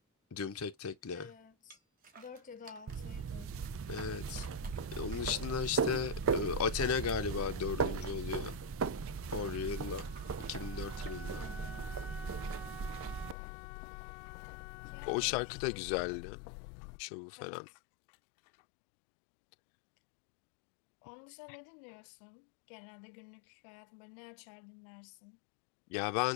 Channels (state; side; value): drops out; right; at 13.4 s